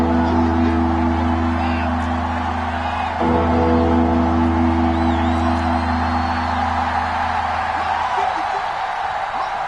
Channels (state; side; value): noise; left; hum, 26 dB below the sound